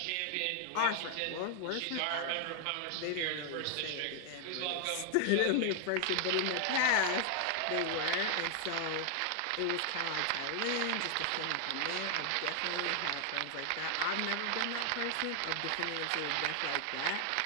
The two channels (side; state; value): both; different; correlation 0.00